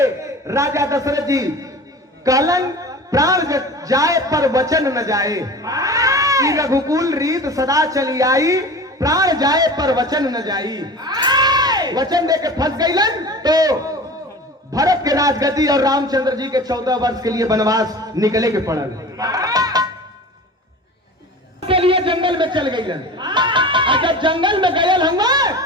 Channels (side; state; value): both; normal; correlation 0.37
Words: राजा दशरथ जी कहलन प्राण जाए पर वचन न जाए, कि रघुकुल रीत सदा चली आई, प्राण जाए पर वचन न जाई। वचन देके फंस गईलन तो भरत के राजगद्दी और रामचंद्र जी के 14 वर्ष के लिए वनवास निकले के पड़ल। के लिए जंगल में चल गईलन, और जब जंगल में गयल हम